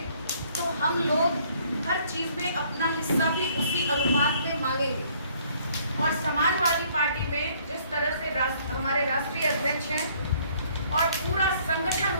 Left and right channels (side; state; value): both; inverted; correlation -0.62